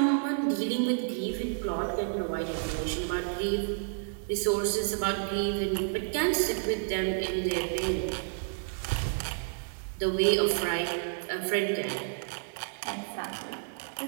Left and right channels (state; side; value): silent; left; digital silence